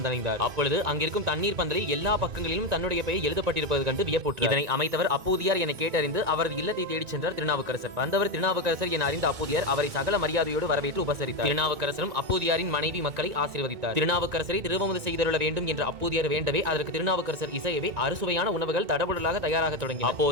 அப்பொழுது அங்கிருக்கும் தண்ணீர் பந்தலில் எல்லா பக்கங்களிலும் தன்னுடைய பெயர் எழுதப்பட்டிருப்பது கண்டு வியப்புற்றார். இதனை அமைத்தவர் அப்போதியார் என கேட்டறிந்து அவரது இல்லத்தை தேடிச் சென்றார் திருநாவுக்கரசர். வந்தவர் திருநாவுக்கரசர் என அறிந்த அப்போதியார் அவரை சகல மரியாதையோடு வரவேற்று உபசரித்தார். திருநாவுக்கரசரும் அப்போதியாரின் மனைவி மக்களை ஆசீர்வதித்தார். திருநாவுக்கரசரை திருவமுது செய்தருள வேண்டும் என்ற அப்போதியார் வேண்டவே அதற்கு திருநாவுக்கரசர் இசையவே அறுசுவையான உணவுகள் தடபுடலாக தயாராக தொடங்கி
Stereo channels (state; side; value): late; left; 2.2 ms